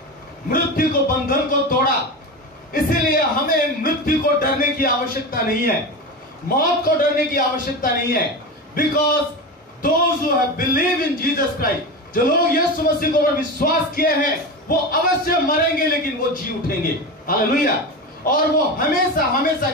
मृत्यु को, बंधन को तोड़ा, इसीलिए हमें मृत्यु को डरने की आवश्यकता नहीं है, मौत को डरने की आवश्यकता नहीं है। Because those who have believed in Jesus Christ, जो लोग यीशु मसीह को पर विश्वास किए हैं, वो अवश्य मरेंगे लेकिन वो जी उठेंगे। हालेलुया। और वो हमेशा हमेशा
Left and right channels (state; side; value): normal; both; correlation 0.23